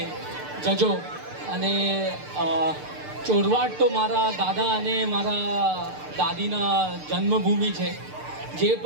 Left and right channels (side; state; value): left; late; 6.7 ms